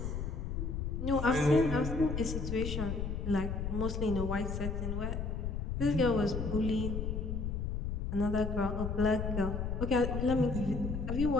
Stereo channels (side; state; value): left; noise; rumble, 2 dB below the sound